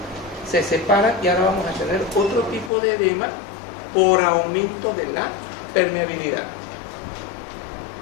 se separan y ahora vamos a tener otro tipo de edema por aumento de la permeabilidad.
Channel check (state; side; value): drops out; right; at 2.7 s